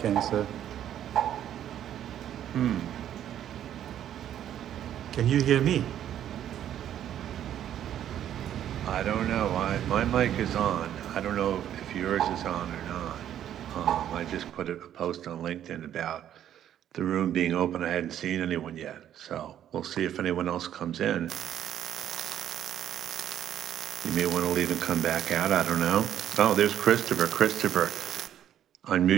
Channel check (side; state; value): left; quieter; 10.7 dB